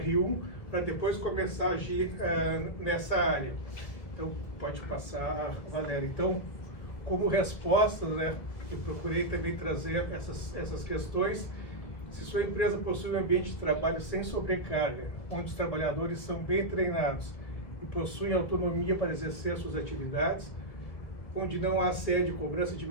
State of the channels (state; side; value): late; right; 1.8 ms